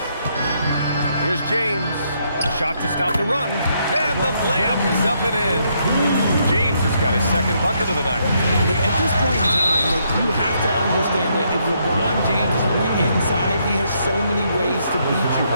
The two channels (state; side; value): inverted; both; correlation -0.74